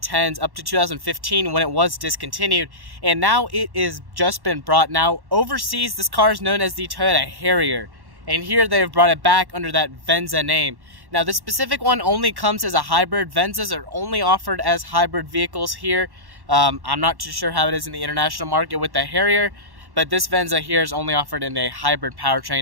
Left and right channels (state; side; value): late; left; 1.1 ms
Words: up to 2015 when it was discontinued, and now it is just been brought. Now overseas this car is known as the Toyota Harrier, and here they've brought it back under that Venza name. Now this specific one only comes as a hybrid. Venzas are only offered as hybrid vehicles here. I'm not too sure how it is in the international market with the Harrier, but this Venza here is only offered in a hybrid